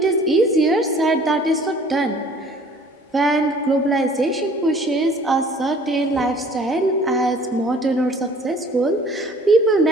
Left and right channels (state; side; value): normal; both; correlation 0.52